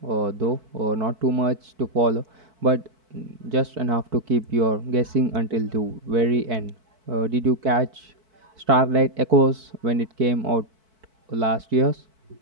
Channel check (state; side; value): late; left; 4.6 ms